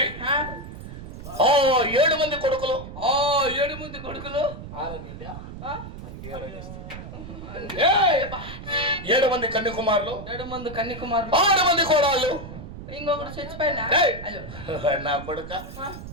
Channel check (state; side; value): noise; right; rumble, 11 dB below the sound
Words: ఓ 7 మంది కొడుకులు 7 మంది కొడుకులు 7 మంది కన్యకుమారులు 7 మంది కన్యకుమారులు 6 మంది కోడళ్ళు ఇంకొకటి చచ్చిపోయినా నా కొడుక